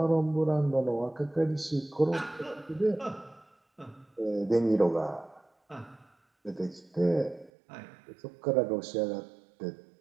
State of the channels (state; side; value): drops out; left; at 7.5 s